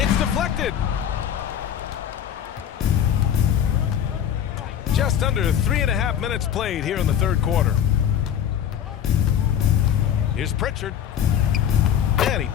deflected. Just under 3.5 minutes played here in the third quarter. Here's Pritchard. And he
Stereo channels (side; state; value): right; quieter; 9.5 dB